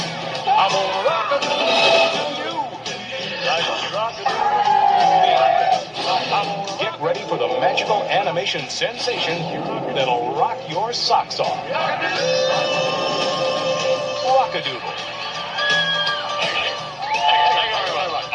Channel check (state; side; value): identical; both; correlation 1.00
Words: I'm gonna rock-a-doodle to you. Like a rock-a-doodle. Get ready for the magical animation sensation that'll rock your socks off. Rock-A-Doodle.